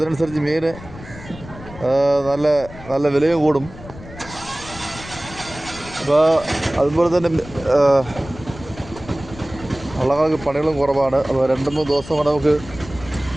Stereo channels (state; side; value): noise; left; rumble, 16 dB below the sound